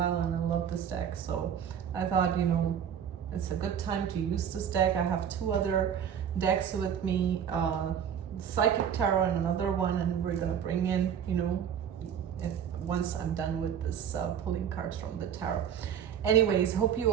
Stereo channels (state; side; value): quieter; left; 8.6 dB